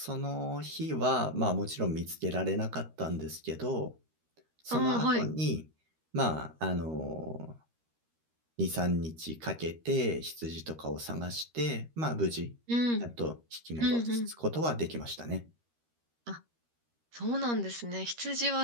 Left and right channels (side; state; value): left; late; 13 ms